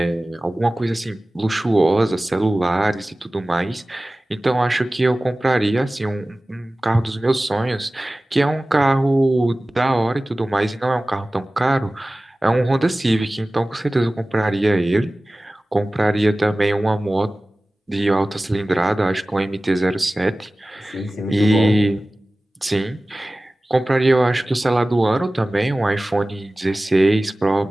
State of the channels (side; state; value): both; normal; correlation 0.97